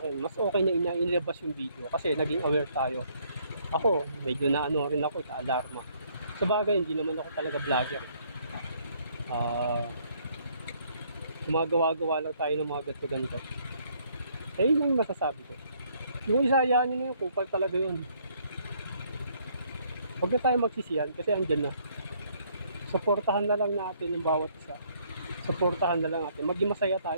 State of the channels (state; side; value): inverted; both; correlation -0.66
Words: mas okay na inilabas yung video kasi naging aware tayo. Ako, medyo rin ako, alarma. Sa bagay, hindi naman ako talaga vlogger. Gumagawa-gawa lang tayo ng mga ganito-ganito. Yun ang masasabi ko. Yung isa, hayaan nyo na yung kupal talaga yun. Huwag na tayo magsisiyan kasi andyan na. Suportahan na lang natin ng bawat isa. Suportahan na lang natin. Maging masaya